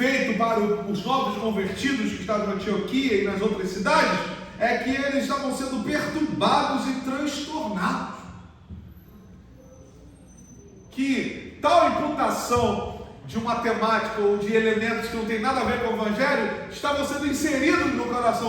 para os novos convertidos que estavam em Antioquia e nas outras cidades, é que eles estavam sendo perturbados e transtornados. Que tal imputação de uma temática ou de elementos que não tem nada a ver com o Evangelho estavam sendo inseridos no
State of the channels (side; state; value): both; identical; correlation 1.00